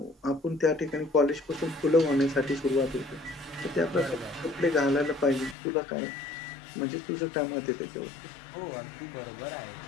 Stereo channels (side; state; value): right; drops out; at 5.6 s